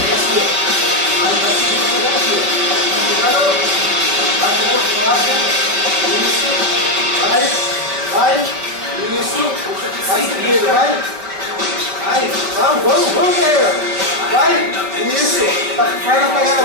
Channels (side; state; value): left; late; 5.0 ms